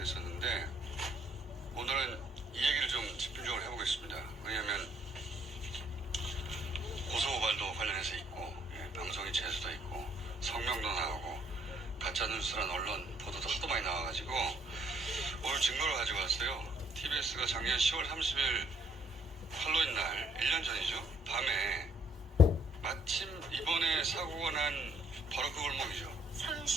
오늘은 이 얘기를 좀 집중적으로 해보겠습니다. 왜냐하면 고소고발도 관련해서 있고 방송이 재수도 있고 성명도 나오고 가짜뉴스란 언론 보도도 하도 많이 나와가지고 오늘 증거를 가지고 왔어요. TBS가 작년 10월 30일 할로윈 날 1년 전이죠. 밤에 마침 이번에 사고가 난 바로 그 골목이죠.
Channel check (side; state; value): both; normal; correlation 0.66